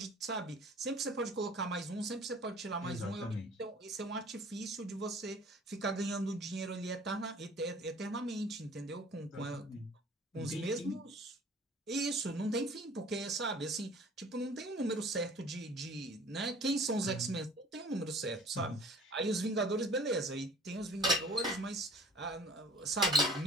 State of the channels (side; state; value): both; normal; correlation 0.50